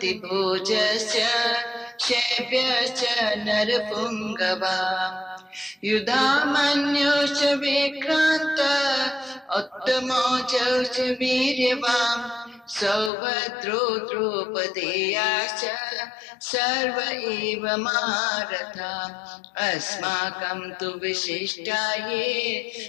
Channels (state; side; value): drops out; right; at 13.1 s